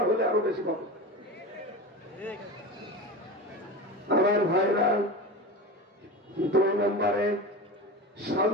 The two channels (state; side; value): normal; both; correlation 0.27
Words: হলে আরো বেশি পাবো। আমার ভাইরা, 2 নম্বরে